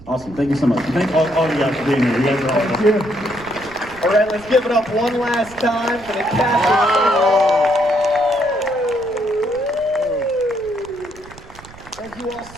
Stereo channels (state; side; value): noise; right; rumble, 21 dB below the sound